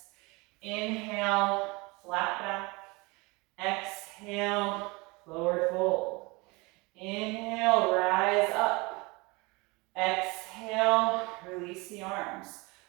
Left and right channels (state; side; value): quieter; left; 25.7 dB